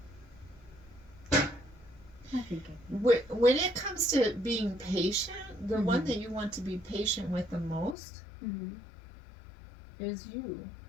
I think when it comes to being patient, the one that you want to be patient with the most is you.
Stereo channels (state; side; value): drops out; right; at 8.0 s